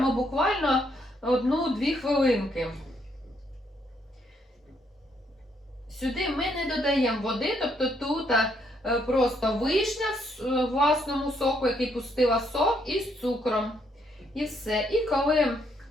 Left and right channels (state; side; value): normal; both; correlation 0.73